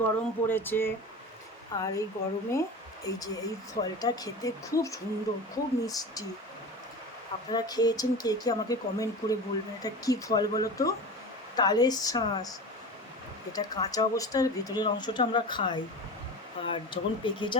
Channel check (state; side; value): normal; both; correlation 0.31